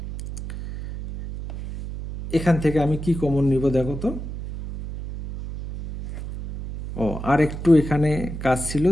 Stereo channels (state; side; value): noise; right; hum, 8 dB below the sound